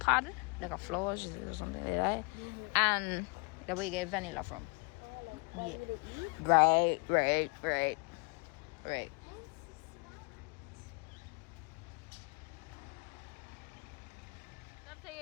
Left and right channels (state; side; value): quieter; right; 32.9 dB